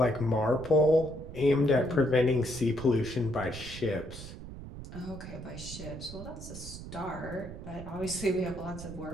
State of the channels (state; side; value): noise; right; rumble, 12 dB below the sound